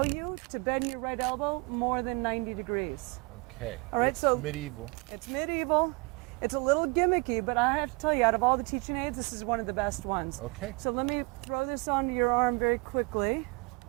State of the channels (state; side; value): quieter; left; 28.8 dB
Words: you to bend your right elbow more than 90 degrees. Okay. All right, It's so- medieval. It's medieval. It's a little gimmicky, but I have to tell you, out of all the teaching aids, this is one of the best ones. Okay. So let me throw this onto your arm very quickly.